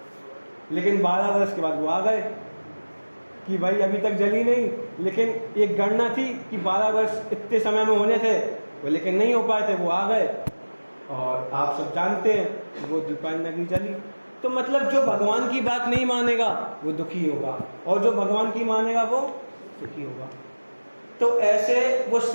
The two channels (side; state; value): both; inverted; correlation -1.00